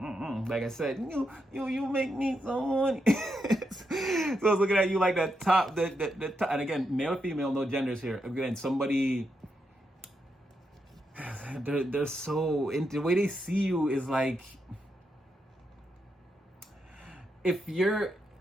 but Like I said, you make me so money. So I was looking at you like that top, the top. And again, male or female, no genders here. Again, somebody, they're so into the way they see you is like, if you're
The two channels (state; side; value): normal; both; correlation 0.83